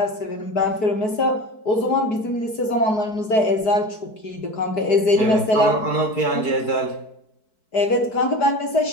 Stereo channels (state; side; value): late; right; 4.6 ms